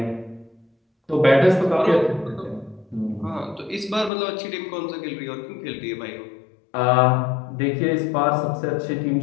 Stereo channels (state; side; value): drops out; right; at 4.1 s